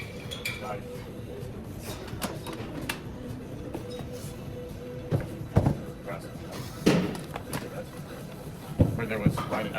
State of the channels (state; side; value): identical; both; correlation 1.00